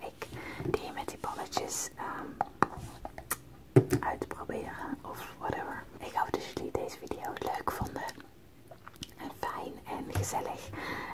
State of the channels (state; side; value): identical; both; correlation 1.00